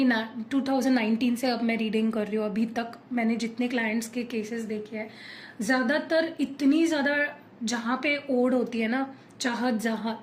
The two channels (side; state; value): both; identical; correlation 1.00